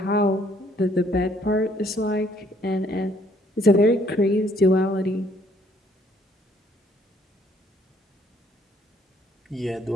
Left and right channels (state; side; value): normal; both; correlation 0.65